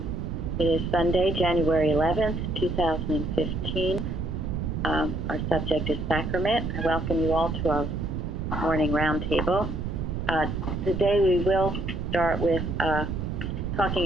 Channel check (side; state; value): right; noise; rumble, 3 dB below the sound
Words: It is Sunday, January 11th, 2015. Our subject is sacrament. I welcome you all to our morning roundtable. Today we will start with